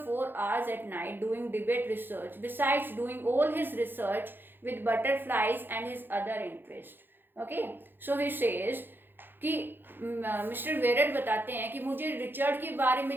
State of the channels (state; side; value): late; left; 0.098 ms